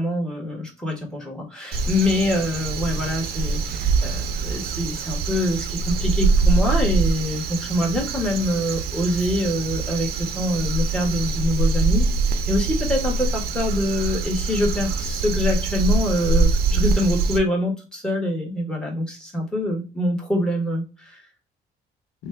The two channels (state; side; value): normal; both; correlation 0.64